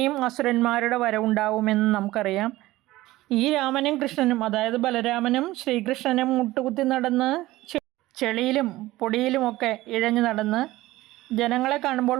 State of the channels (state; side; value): quieter; left; 17.6 dB